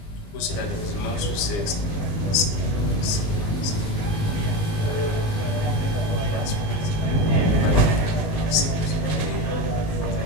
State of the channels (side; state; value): right; late; 20 ms